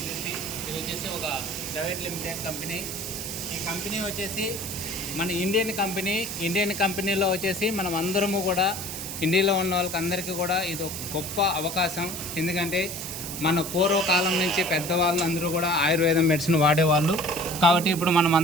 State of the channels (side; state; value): right; noise; hiss, 7 dB below the sound